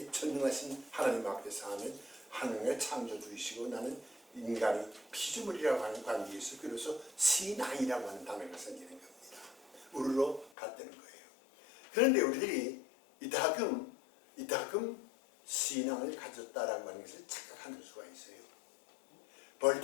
전능하신 하나님 앞에서 하는 하나님의 창조주이시고 나는 인간이 피조물이라고 하는 관계에서 그래서 신앙이라고 하는 단어가 생기는 겁니다. 우르르 같다는 거예요. 그런데 우리들이 이따금 신앙을 가졌다라고 하는 것을 착각하는 수가 있어요.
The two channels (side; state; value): right; drops out; at 10.5 s